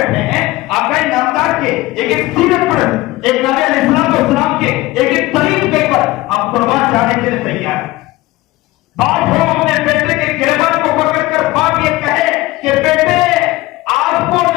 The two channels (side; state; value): right; quieter; 18.8 dB